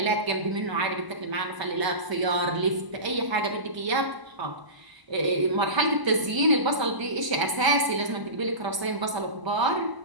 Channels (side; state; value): left; late; 1.0 ms